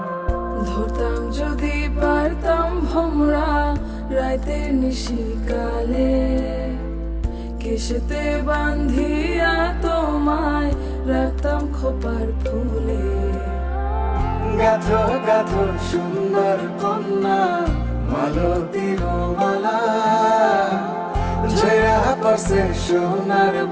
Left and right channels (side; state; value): both; identical; correlation 1.00